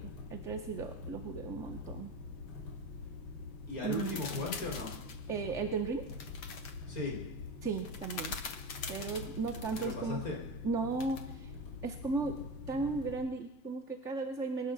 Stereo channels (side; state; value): right; late; 8.1 ms